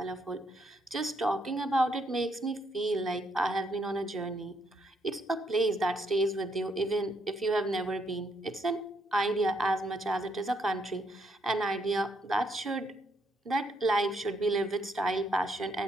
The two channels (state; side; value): normal; both; correlation 0.74